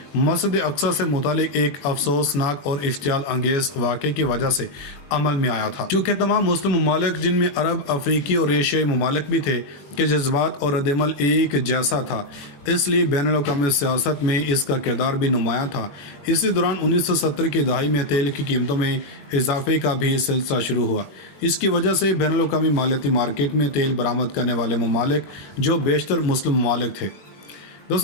मस्जिद अक़सा से मुतालिक एक अफसोसनाक और इश्तियाल अंगेज़ वाक़े की वजह से अमल में आया था। चूँकि तमाम मुस्लिम ममालिक, जिनमें अरब, अफ्रीकी और एशियाई ममालिक भी थे, के जज्बात और रद्द-ए-अमल एक जैसा था, इसलिए बैनुल-अक़वामी सियासत में इसका किरदार भी नुमायाँ था। इसी दौरान 1970 की दहाई में तेल की कीमतों में इजाफे का भी सिलसिला शुरू हुआ। इसकी वजह से बैनुल-अक़वामी मालियाती मार्केट में तेल बरामद करने वाले ममालिक जो बेशतर मुस्लिम ममालिक थे।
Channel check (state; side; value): late; right; 21 ms